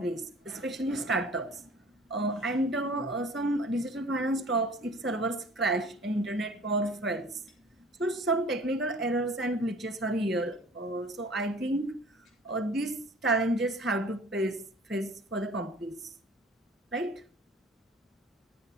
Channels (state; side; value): normal; both; correlation 0.47